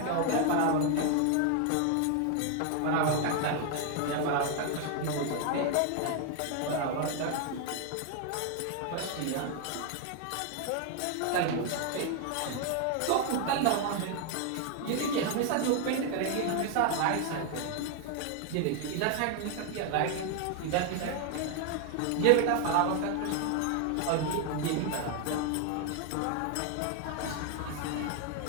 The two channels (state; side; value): different; both; correlation 0.01